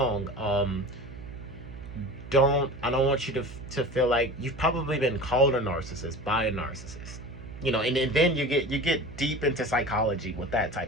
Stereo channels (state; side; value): noise; right; hum, 14 dB below the sound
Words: I don't want you to feel like you've probably been called a narcissist by a narcissist. You know, and then you get deep into psychology with that